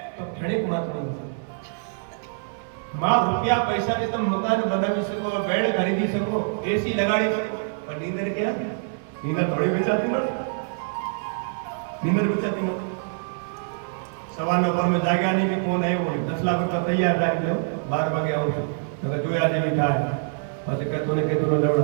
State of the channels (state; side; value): silent; left; digital silence